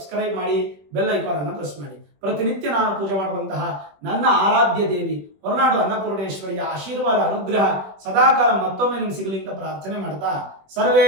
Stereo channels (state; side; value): late; left; 21 ms